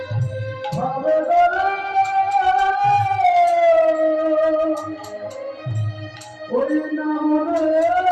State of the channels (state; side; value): identical; both; correlation 1.00